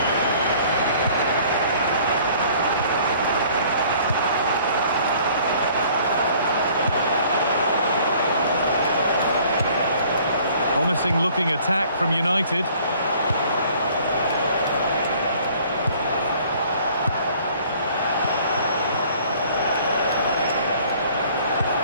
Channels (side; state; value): both; inverted; correlation -0.55